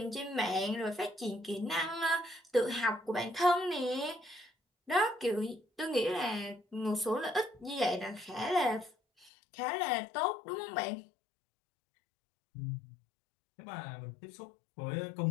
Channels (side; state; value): right; drops out; at 9.3 s